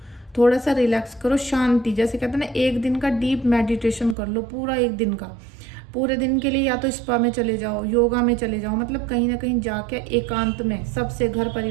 थोड़ा सा रिलैक्स करो, शांति, जैसे कहते हैं ना, एक दिन का डीप मेडिटेशन कर लो, पूरा एक दिन का, पूरे दिन के लिए या तो स्पा में चले जाओ, योगा में चले जाओ, मतलब कहीं ना कहीं जाके एकांत में सबसे, घर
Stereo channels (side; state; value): left; drops out; at 4.2 s